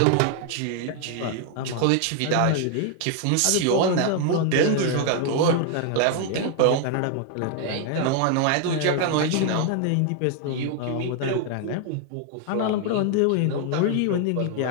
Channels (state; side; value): different; both; correlation 0.00